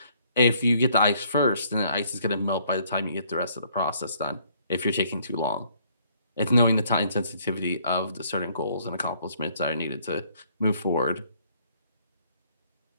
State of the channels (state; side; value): inverted; both; correlation -0.64